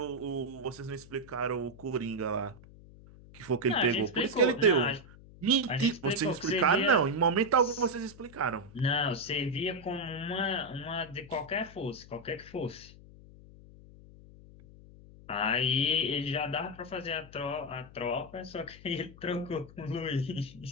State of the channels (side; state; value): left; noise; hum, 20 dB below the sound